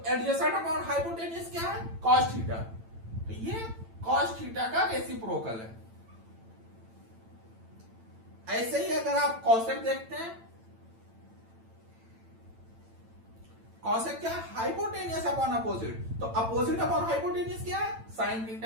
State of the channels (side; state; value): left; late; 8.9 ms